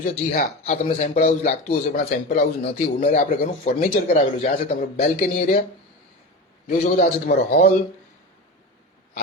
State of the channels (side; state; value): both; normal; correlation 0.26